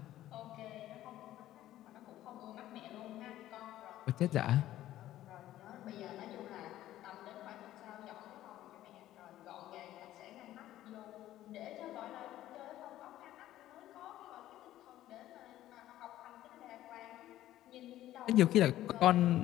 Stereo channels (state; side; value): quieter; right; 13.8 dB